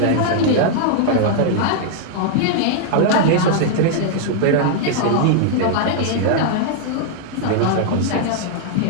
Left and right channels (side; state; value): both; different; correlation -0.01